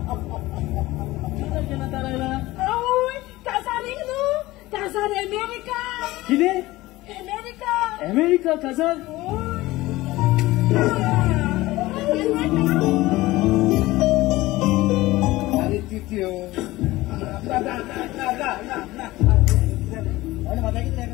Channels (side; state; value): right; quieter; 18.5 dB